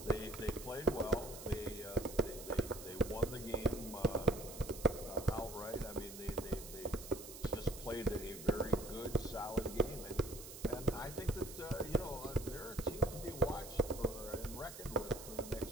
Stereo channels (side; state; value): right; noise; hiss, 12 dB below the sound